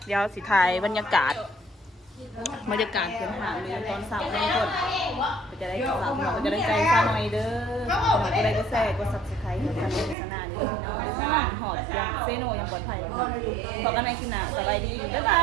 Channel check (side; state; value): left; drops out; at 10.2 s